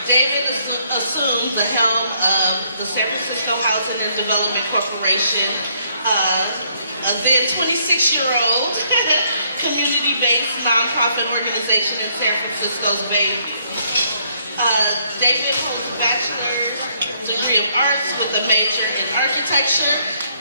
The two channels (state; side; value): inverted; both; correlation -0.70